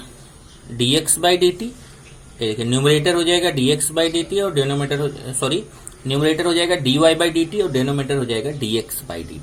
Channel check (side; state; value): both; identical; correlation 1.00